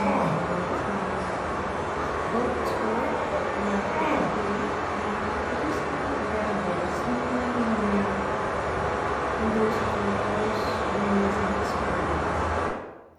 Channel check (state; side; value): identical; both; correlation 1.00